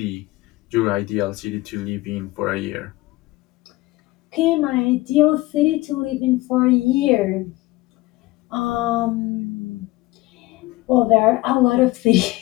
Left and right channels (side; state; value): right; quieter; 19.5 dB